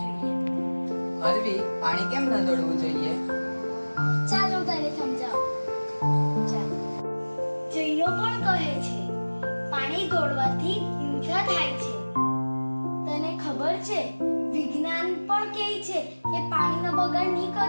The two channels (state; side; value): inverted; both; correlation -1.00